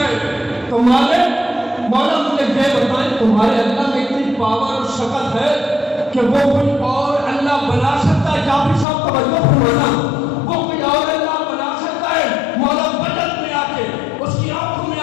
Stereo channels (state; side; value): drops out; right; at 8.8 s